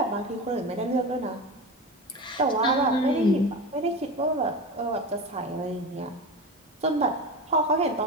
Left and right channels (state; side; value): normal; both; correlation 0.26